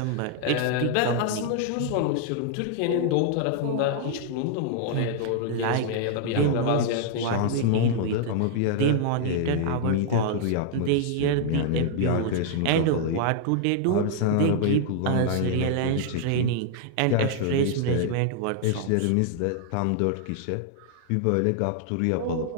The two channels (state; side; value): different; both; correlation 0.00